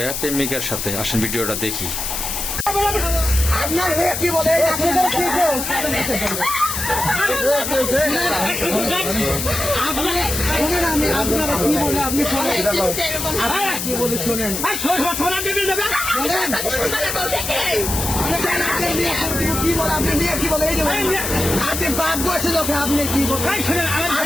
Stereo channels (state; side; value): noise; left; hiss, 3 dB below the sound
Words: প্রেমিকার সাথে। আসেন ভিডিওটা দেখি। আপনার মেয়ে কি বলে? আপনারা কি বলে আপনি শোনেন, কি বলে শোনেন। কি বলে আপনার মেয়ে কি বলে? এই যে আপনি বাপ বসে যখন আপনি কি বলেন,